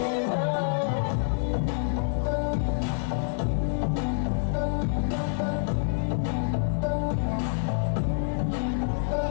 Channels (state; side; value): silent; right; 60 dB below the other